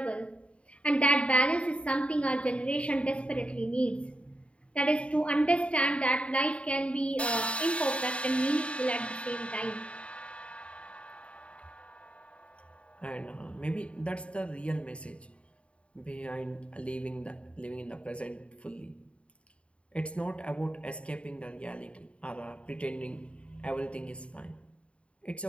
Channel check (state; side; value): late; right; 0.061 ms